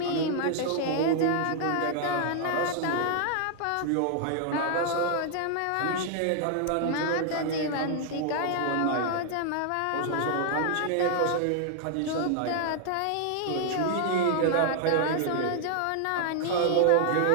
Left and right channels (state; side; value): different; both; correlation 0.00